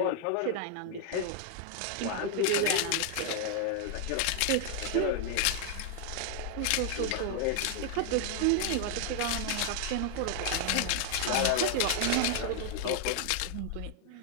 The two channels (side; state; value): both; different; correlation 0.00